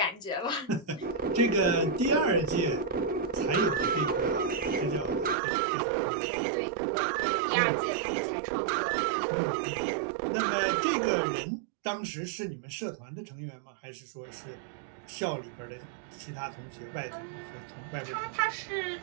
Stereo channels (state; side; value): drops out; left; at 5.4 s